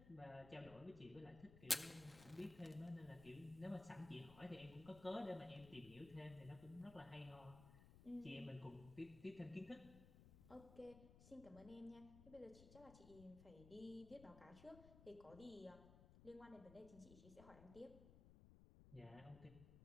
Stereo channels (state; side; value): noise; left; rumble, 15 dB below the sound